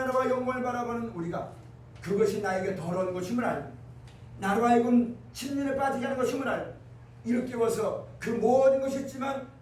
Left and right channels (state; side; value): identical; both; correlation 1.00